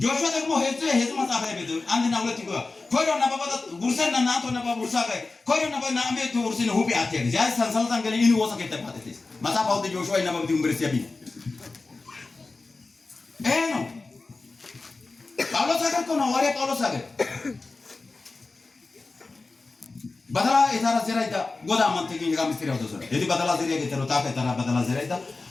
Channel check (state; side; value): quieter; right; 3.6 dB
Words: ጆሹዋ ደግሞ ሄዝ መጽሐፍ ላይ ቤት አንድና ሁለት ይገባ ኮዶ ነባባ ጉርሰና ናቶ ነባባ ጉርሳ ጋር ኮዶ ነባባ ናምቤት ጉርሲነ ሁቢ አትያግ ያ ሰንሰልታን ገለ ይኒ ወሰከ ተባተት መጽሐፍ አውጥ ጆሹዋ ይነበብ ዩኒቨርሲቲ ያቢ ነው ጳውሎስ አገር ነው ወሬ ጳውሎስ አገር badala etara zeraida goda mantekin ga misteri auto sore edi badala zeria getero ta ka etara badala zeraida